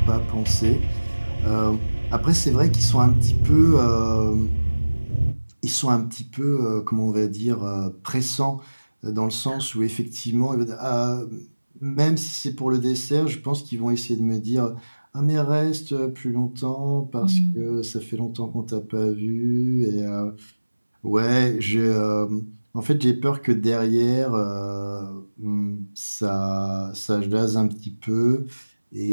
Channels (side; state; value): both; inverted; correlation -1.00